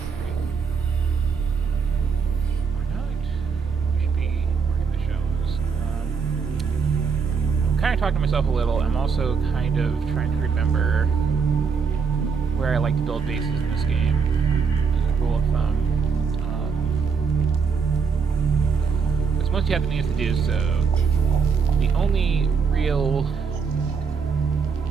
Or not? We should be working the shows. I'm kind of talking to myself a little. I'm also kind of trying to remember where I like to build bases in this game, as a rule of thumb. Because once you have the means to do so, the only real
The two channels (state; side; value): quieter; left; 5.7 dB